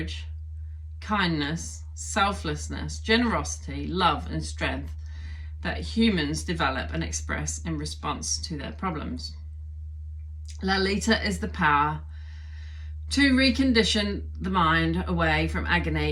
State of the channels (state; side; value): identical; both; correlation 1.00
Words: kindness, selflessness, generosity, love, and strength that humans develop and express in response to their problems. Lalita is the power to recondition the mind away from